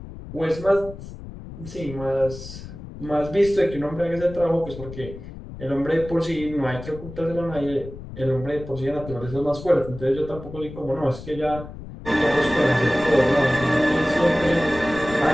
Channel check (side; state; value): left; noise; rumble, 13 dB below the sound